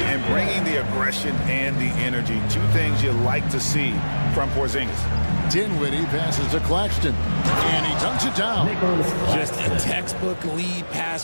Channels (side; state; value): both; inverted; correlation -1.00